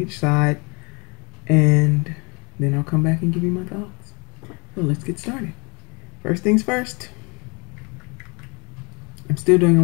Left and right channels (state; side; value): quieter; right; 30.4 dB